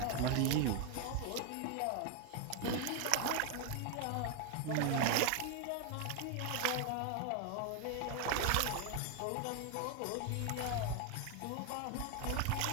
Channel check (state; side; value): different; both; correlation 0.01